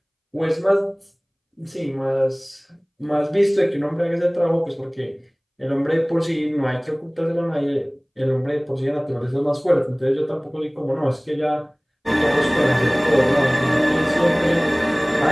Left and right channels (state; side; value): identical; both; correlation 1.00